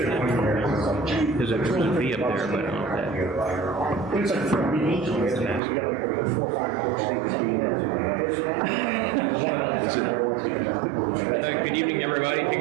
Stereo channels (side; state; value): left; drops out; at 5.6 s